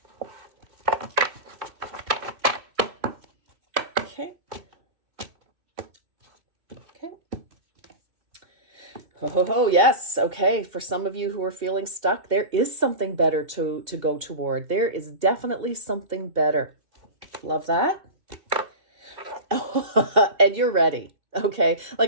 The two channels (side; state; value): left; late; 2.9 ms